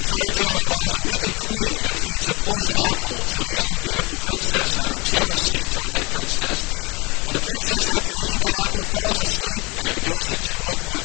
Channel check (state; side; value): quieter; right; 26.8 dB